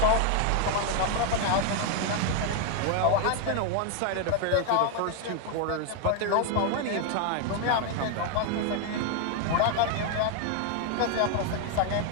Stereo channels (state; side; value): different; both; correlation 0.00